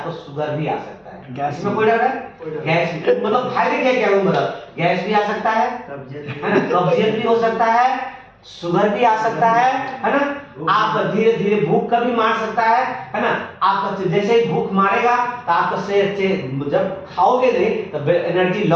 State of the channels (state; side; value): identical; both; correlation 1.00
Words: शुगर भी आ सकता है, इसमें कोई डर है? गैस मतलब फायदे क्या मतलब गैस भी आ सकता है ना, कब्जियत भी हो सकता है, शुगर भी आ सकता है ना, आप धीरे धीरे भूख का भी मार सकता है ना। आपका जैसे ही भूख मारेगा तो आपका शरीर जब खाओगे नहीं तो एनर्जी